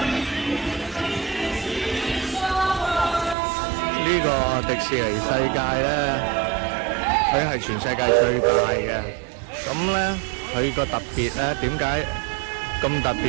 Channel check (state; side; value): drops out; left; at 3.4 s